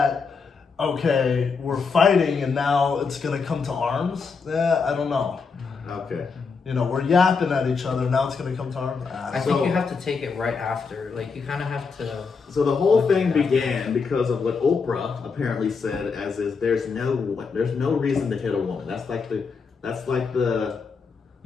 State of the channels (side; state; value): right; quieter; 5.1 dB